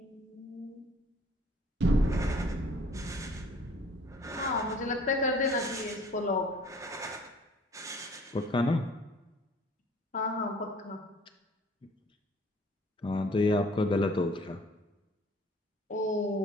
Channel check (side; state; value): both; normal; correlation 0.54